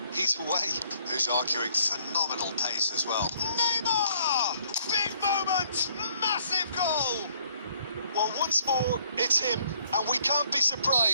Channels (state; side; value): inverted; both; correlation -0.64